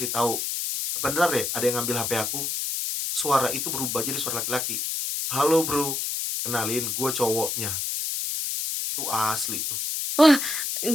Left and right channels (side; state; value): left; noise; hiss, 1 dB below the sound